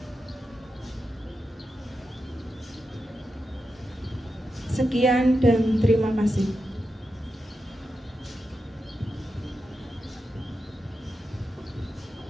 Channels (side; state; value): both; normal; correlation 0.89